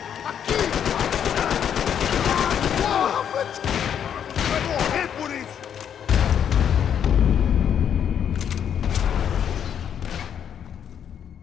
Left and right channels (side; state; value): right; quieter; 8.7 dB